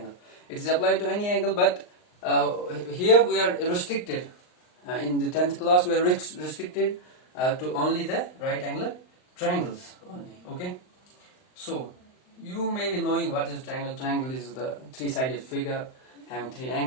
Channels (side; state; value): right; late; 39 ms